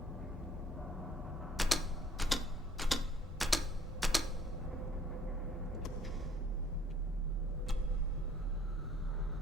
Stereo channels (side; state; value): both; normal; correlation 0.58